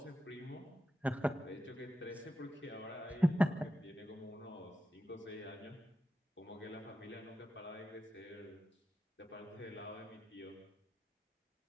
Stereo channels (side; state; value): both; normal; correlation 0.89